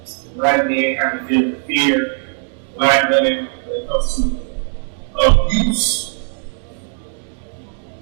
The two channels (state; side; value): silent; left; 61 dB below the other